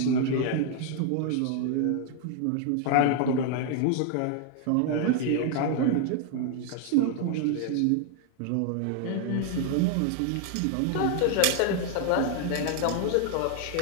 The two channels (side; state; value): both; different; correlation 0.00